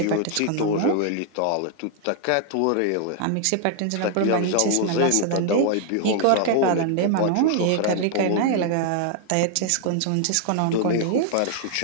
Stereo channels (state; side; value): different; both; correlation 0.00